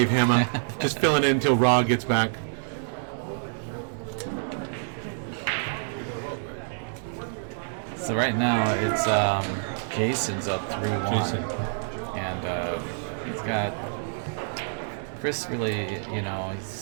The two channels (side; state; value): left; silent; digital silence